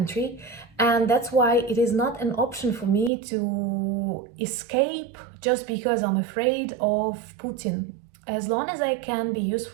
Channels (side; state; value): left; drops out; at 3.1 s